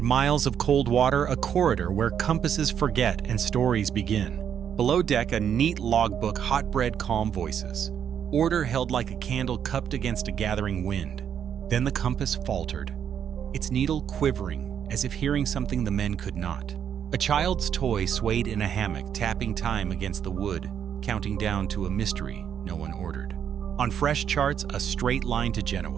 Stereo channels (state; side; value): quieter; left; 8.6 dB